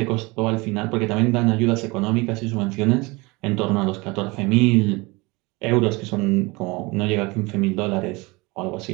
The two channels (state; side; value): quieter; left; 24.6 dB